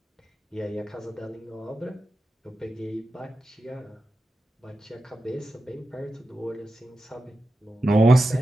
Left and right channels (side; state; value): both; normal; correlation 0.91